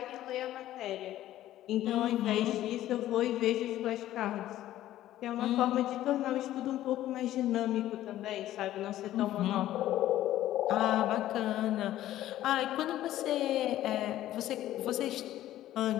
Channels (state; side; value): quieter; right; 13.6 dB